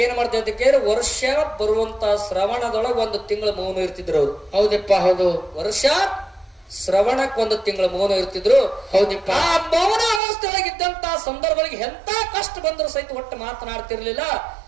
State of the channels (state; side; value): drops out; left; at 10.2 s